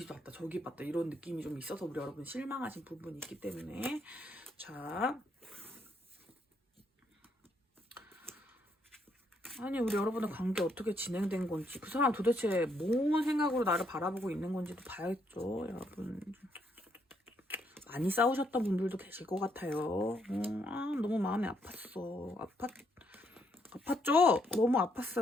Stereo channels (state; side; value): normal; both; correlation 0.74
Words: 봤다 저기 봤다 이런 느낌이 좀 있어서 우리 여러분 실망하신 부분이 있기 때문에 자 아니 우리 여러분의 관계 어떻게 진행된 건지 그 사람 도대체 뭔 생각으로 나를 바라보고 있는 건지도 봐야겠죠. 여러분 많이 싸우셨던 분들도 계실 것 같아요. 너무 마음이 아팠어. 아팠죠? 너무